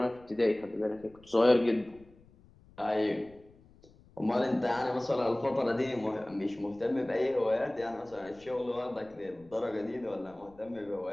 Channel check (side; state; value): left; noise; rumble, 26 dB below the sound